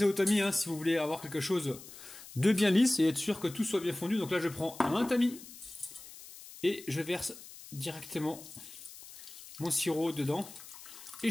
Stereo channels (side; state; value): left; noise; hiss, 16 dB below the sound